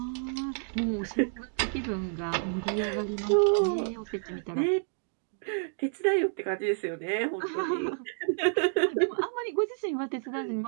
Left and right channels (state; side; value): silent; left; digital silence